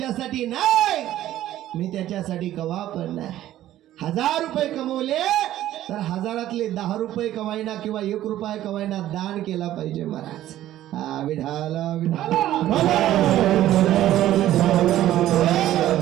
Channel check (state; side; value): quieter; left; 13.4 dB